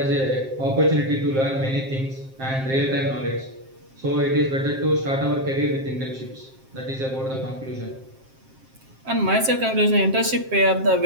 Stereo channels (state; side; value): late; left; 7.6 ms